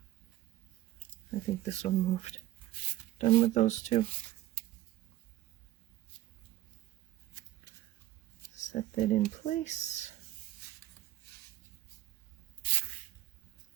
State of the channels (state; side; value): quieter; left; 15.1 dB